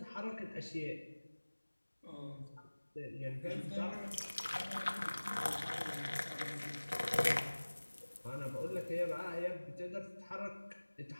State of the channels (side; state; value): both; inverted; correlation -1.00